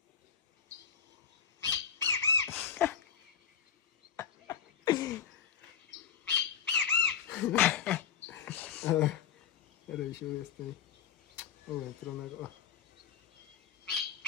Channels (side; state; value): right; quieter; 7.6 dB